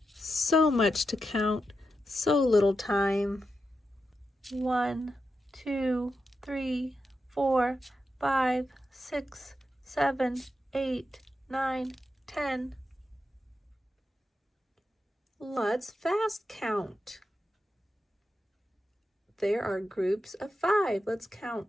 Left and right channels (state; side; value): normal; both; correlation 0.88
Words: So much to count, so little time. 1, 2, 3, 4, 5, 6, 7, 8, 9, 10. Let's fast count. There are groups of 5. Let's